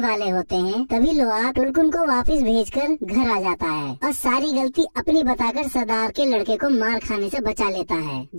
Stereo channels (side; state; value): both; inverted; correlation -1.00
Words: वाले होते हैं, तभी लोआक टुलकुन को वापस भेजकर घर आ जाता है और सारी गलती अपनी बताकर सरदार के लड़के को मार खाने से बचा लेता है,